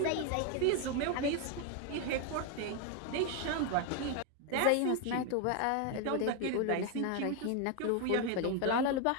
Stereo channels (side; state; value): both; different; correlation 0.01